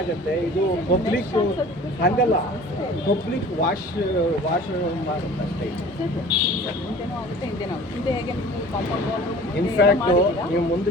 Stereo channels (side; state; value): both; normal; correlation 0.45